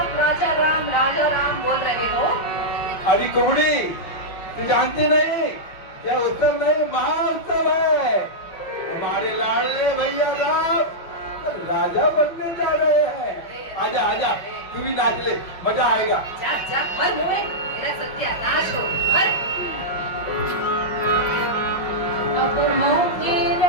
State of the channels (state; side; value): late; right; 6.1 ms